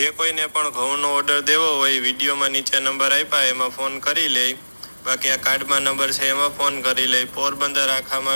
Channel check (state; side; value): inverted; both; correlation -1.00